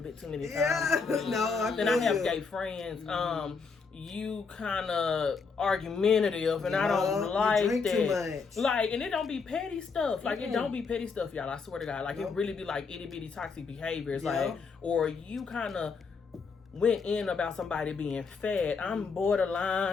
bit too many times. Yeah. No, Then I have gay friends. You kind of argumentative, and I don't like you drink that. Too much. Like, and it don't be petty stuff. Like, it don't be petty stuff, y'all. I swear to God. Like, it really be like itty bitty toxic behaviors. Like, or you kind of went in about somebody being fat. I'm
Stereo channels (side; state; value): right; quieter; 5.0 dB